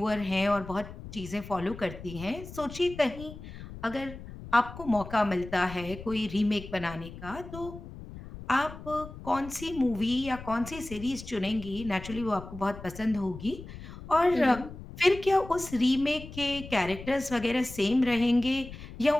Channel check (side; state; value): left; noise; rumble, 13 dB below the sound